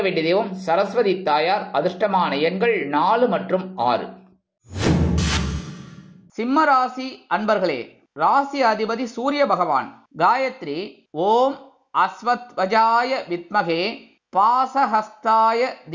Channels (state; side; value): identical; both; correlation 1.00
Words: வேண்டிய தெய்வம் சரஸ்வதி தாயார். அதிர்ஷ்டமான எண்கள் 4 மற்றும் 6. சிம்ம ராசி அன்பர்களே, ராசி அதிபதி சூரிய பகவான். காயத்ரி ஓம் அஸ்வத்வஜாய வித்மகே பாசஹஸ்தாய